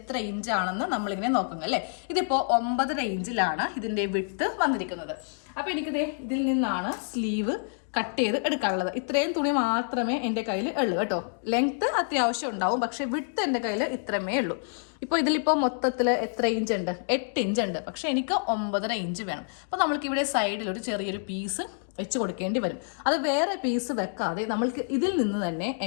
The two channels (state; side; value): silent; right; digital silence